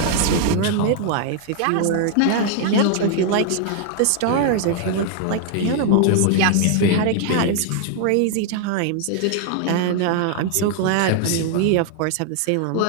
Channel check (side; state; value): both; different; correlation 0.00